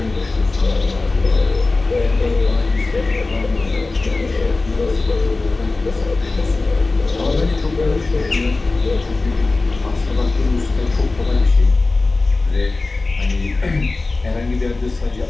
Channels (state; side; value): quieter; right; 3.4 dB